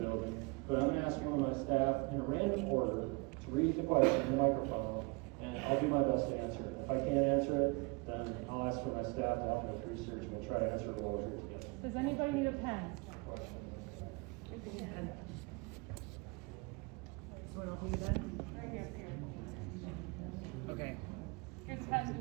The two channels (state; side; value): quieter; left; 28.8 dB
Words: building. But I'm going to ask you and my staff in a random order to read the question in the microphone, and I'll do my best to answer it. If I can't answer it, then I'll ask for my staff to help me with research, and we'll try to answer it all here together. Does anybody need a pen? Okay. Here's the pen.